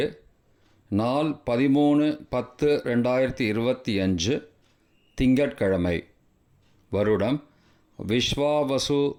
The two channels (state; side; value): identical; both; correlation 1.00